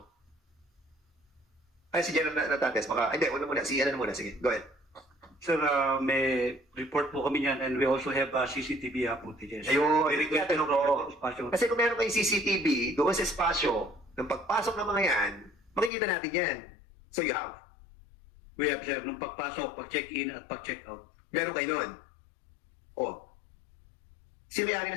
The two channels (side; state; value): right; drops out; at 15.9 s